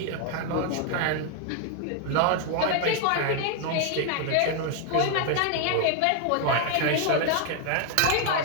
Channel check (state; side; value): different; both; correlation 0.00